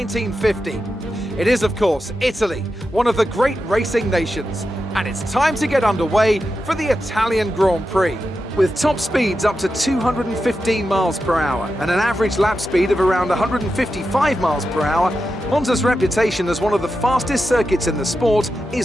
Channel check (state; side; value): normal; both; correlation 0.89